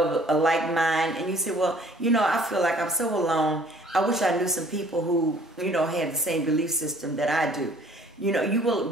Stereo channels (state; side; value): normal; both; correlation 0.56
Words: like mind, and you say, well, I feel like I'm so alone. I wish I knew some people who, had the same belief system that I do. You